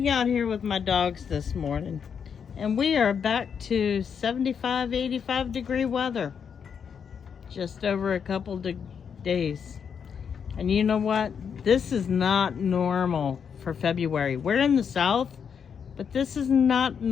out here with my dogs this morning, and we are back to 75, 85 degree weather just over a couple days. And you know what? This is not normal for February. We're in the South, but this is not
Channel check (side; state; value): right; quieter; 7.1 dB